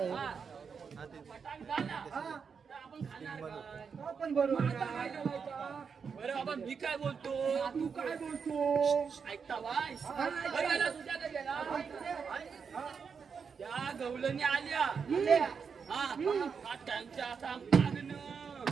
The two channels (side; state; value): left; quieter; 6.0 dB